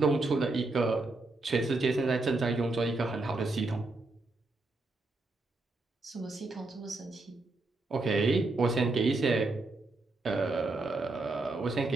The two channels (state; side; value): quieter; left; 3.2 dB